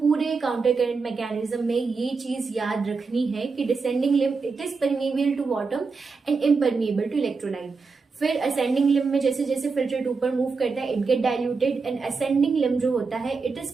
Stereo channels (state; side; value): quieter; left; 4.6 dB